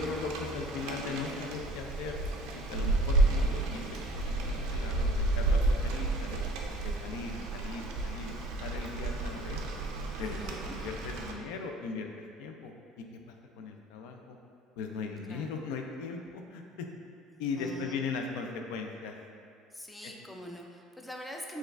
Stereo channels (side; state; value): both; normal; correlation 0.48